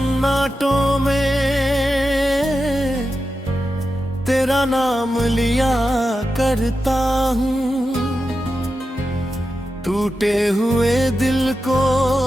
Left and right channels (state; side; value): normal; both; correlation 0.90